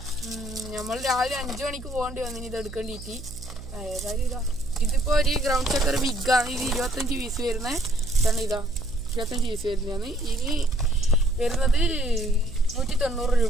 നമ്മൾ രാവിലെ 5 മണിക്ക് പോകേണ്ടി വന്നിന് ഇത് എടുക്കേണ്ടിയിട്ട്. ഏതായാലും ഇതാ ഇതിപ്പോൾ ഒരു ഗ്രൗണ്ട് ചക്കർ ബിഗാണ്. ഇത് 25 പീസ് വരുന്നത്. ഇതാണ് ഇതാ 25 പീസ് വരുന്നതാണ്. ഇനി വരുന്നത് 190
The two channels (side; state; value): right; noise; hum, 14 dB below the sound